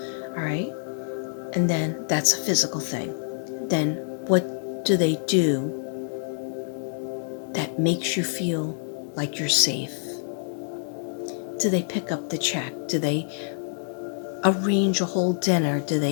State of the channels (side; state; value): right; silent; digital silence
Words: All right? And then that's a physical thing. Then what do they do that makes you feel like you're safe? Do they pick up the check? Do they arrange a whole dinner? Do